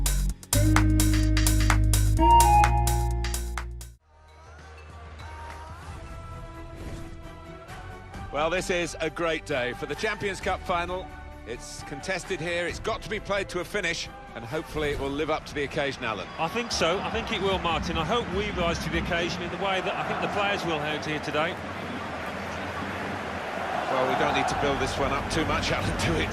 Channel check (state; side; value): identical; both; correlation 1.00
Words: this is a great day for the Champions Cup final. It's contested here, it's got to be played to a finish, and hopefully it will live up to the occasion, Alan. I think so. I think it will, Martin. I hope we rise to the occasion in the way that I think the players will out here today. Well, we don't need to build this one up too much, Alan, do it?